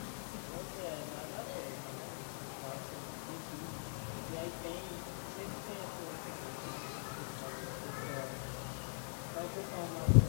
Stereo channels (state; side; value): silent; right; digital silence